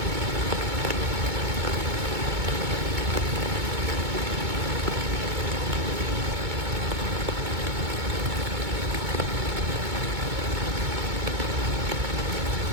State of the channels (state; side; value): late; left; 2.2 ms